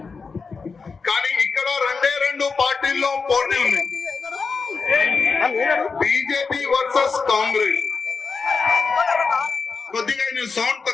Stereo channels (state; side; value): quieter; right; 4.8 dB